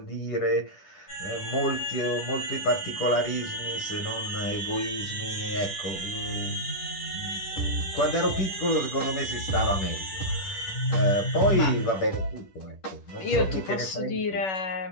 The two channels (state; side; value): late; right; 10 ms